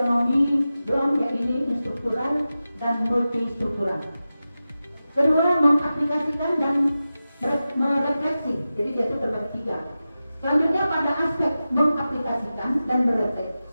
Bloom, yang ini struktural dan multistruktural. Kedua, mengaplikasikan dan merefleksi, jadi dia itu terbagi 3. Selanjutnya pada aspek mengaplikasikan dan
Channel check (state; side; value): inverted; both; correlation -0.94